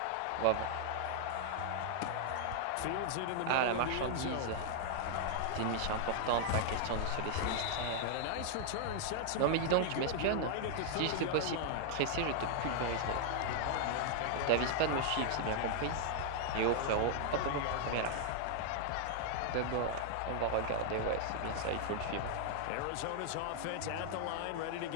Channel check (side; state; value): both; different; correlation 0.00